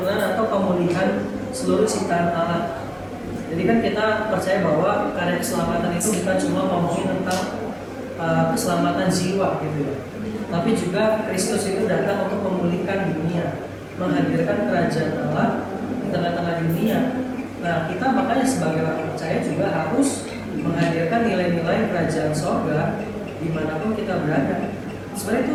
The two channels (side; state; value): both; identical; correlation 1.00